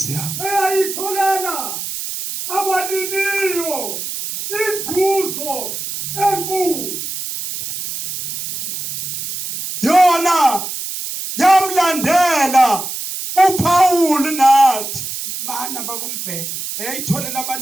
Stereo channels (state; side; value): noise; right; hiss, 6 dB below the sound